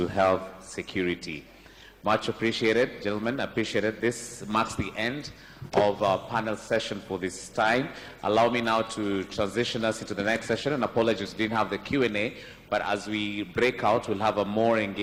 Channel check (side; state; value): both; identical; correlation 1.00